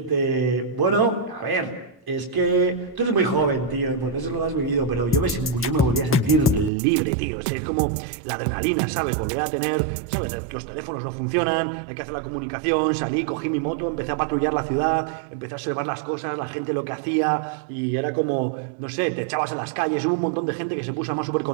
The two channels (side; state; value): left; drops out; at 6.7 s